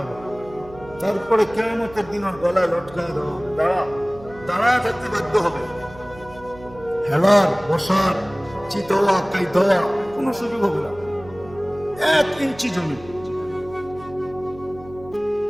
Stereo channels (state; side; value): noise; right; hum, 19 dB below the sound